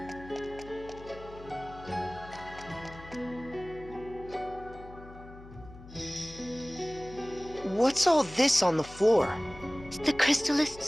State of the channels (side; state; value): left; noise; hum, 17 dB below the sound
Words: all this on the floor? The crystallist